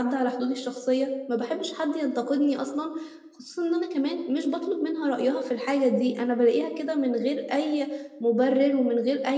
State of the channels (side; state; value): both; identical; correlation 1.00